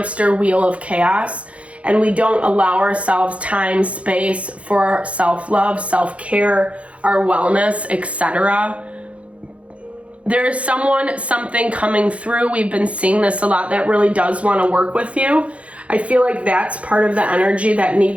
wheel of chaos, and we don't allow ourselves time, space for self-love, self-care, our wellness, etc. There is something coming through. We've been seeing this a lot, that really does want to work with you. I feel like that's part of the energy that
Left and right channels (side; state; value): left; late; 0.063 ms